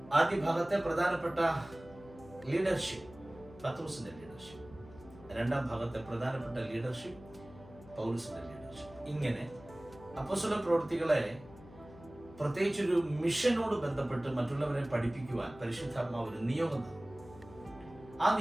ആദ്യ ഭാഗത്തെ പ്രധാനപ്പെട്ട ലീഡർഷിപ്പ് പത്രോസിന്റെ ലീഡർഷിപ്പ്, 2-ാം ഭാഗത്തെ പ്രധാനപ്പെട്ട ലീഡർഷിപ്പ് പൗലോസിന്റെ ലീഡർഷിപ്പ്. ഇങ്ങനെ അപ്പോസ്തല പ്രവൃത്തികളെ പ്രത്യേകിച്ചൊരു മിഷനോട് ബന്ധപ്പെട്ട് മറ്റുള്ളവരെ പഠിപ്പിക്കുവാൻ പരിശുദ്ധാത്മാവ് ഒരു നിയോഗം തന്നു. ആ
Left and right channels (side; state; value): left; noise; hum, 19 dB below the sound